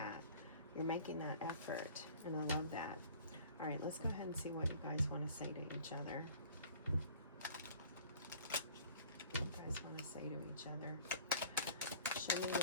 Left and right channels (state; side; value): inverted; both; correlation -0.49